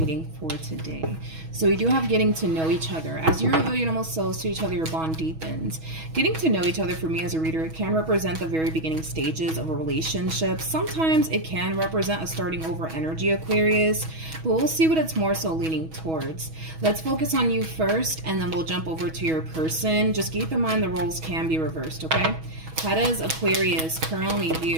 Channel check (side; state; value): left; late; 6.2 ms